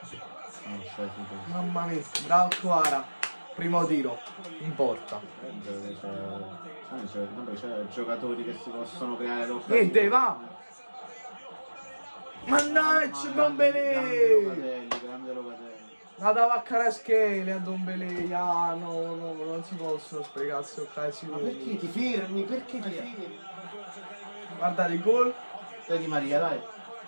Mamma mia, bravo Kvara. Primo tiro, in porta. C'è giocatori che si possono creare l'occasione. Niente, va! Mannaggia, Ndombele! Grande Locatelli. La dava a Kvaratskhelia a Ndombele. Ah, no, non si possono sprecare queste occasioni. Ma perché ti fermi? Guardate il gol. Dai Di Maria, dai.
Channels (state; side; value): inverted; both; correlation -1.00